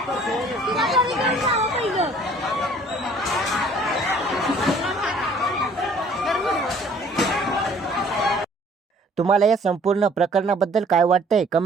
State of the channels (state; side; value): normal; both; correlation 0.56